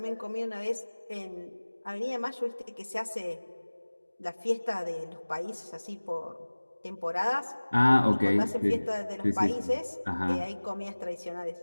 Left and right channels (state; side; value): inverted; both; correlation -1.00